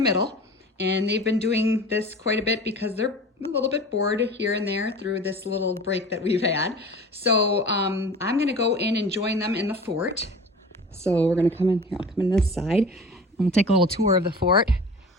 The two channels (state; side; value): normal; both; correlation 0.39